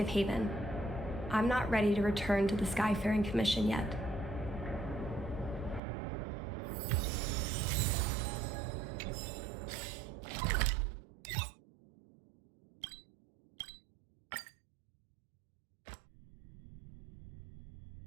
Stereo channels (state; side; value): drops out; left; at 5.8 s